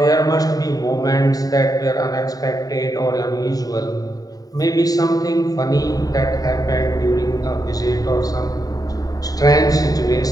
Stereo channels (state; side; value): late; right; 0.18 ms